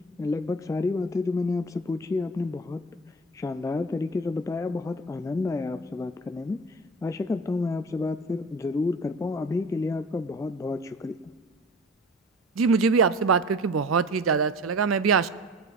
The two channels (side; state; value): both; normal; correlation 0.40